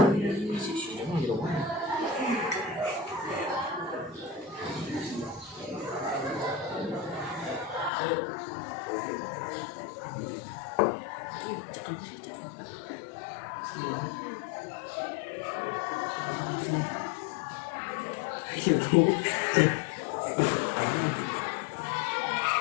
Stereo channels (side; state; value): right; drops out; at 7.9 s